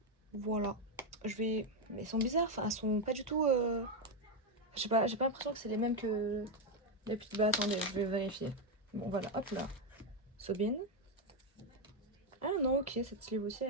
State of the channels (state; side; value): normal; both; correlation 0.05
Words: Voilà. Je vais... Mais elles sont bizarres. Enfin, elles sont pas du tout... j'ai pas l'impression que c'est les mêmes que... Les petites... Bah attendez, je vais vérifier. Bon, voilà. Hop là. Sobin. Ah non, ok. Cette sleeve aussi,